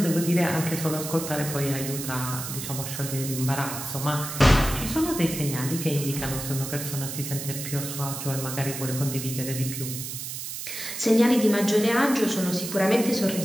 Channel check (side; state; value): right; noise; hiss, 7 dB below the sound